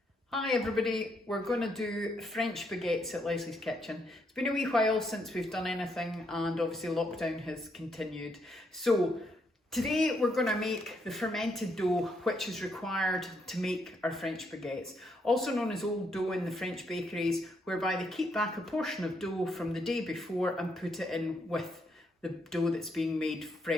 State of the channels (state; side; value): normal; both; correlation 0.76